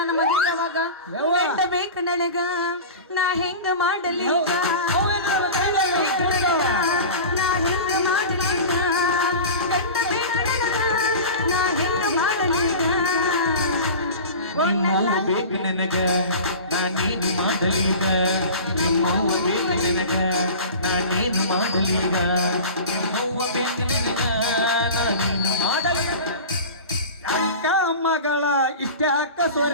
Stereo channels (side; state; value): both; inverted; correlation -0.33